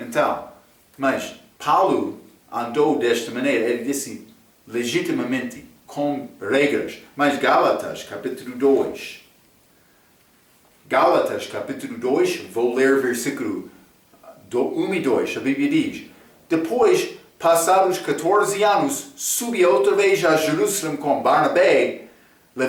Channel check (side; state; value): both; identical; correlation 1.00